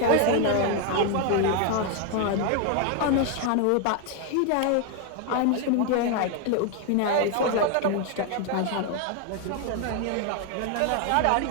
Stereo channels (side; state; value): both; different; correlation 0.01